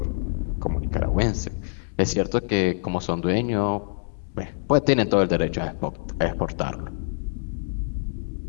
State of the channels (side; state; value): right; silent; digital silence